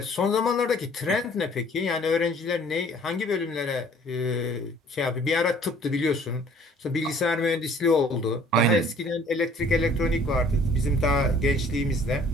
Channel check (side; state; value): both; normal; correlation 0.55